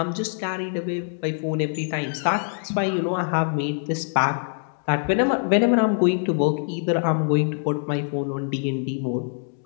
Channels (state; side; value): silent; right; 63 dB below the other